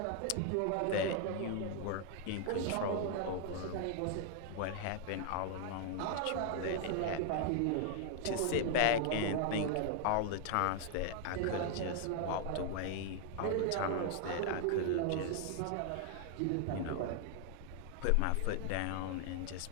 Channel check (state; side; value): different; both; correlation 0.00